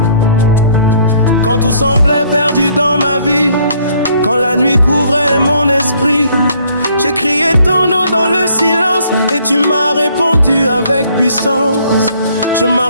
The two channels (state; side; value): inverted; both; correlation -0.64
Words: Quand tout semblait perdu dans ma vie, quand la nuit couvrait mon esprit, j'ai crié ton nom dans le silence et tu m'as répondu avec puissance. Je